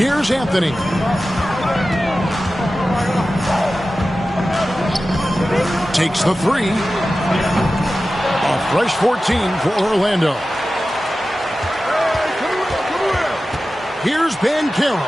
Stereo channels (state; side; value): normal; both; correlation 0.94